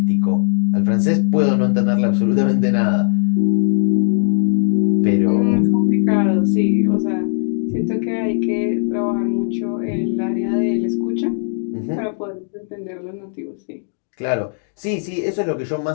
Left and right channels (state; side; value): silent; right; digital silence